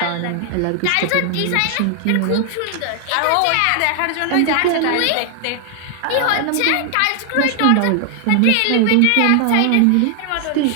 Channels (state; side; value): different; both; correlation 0.00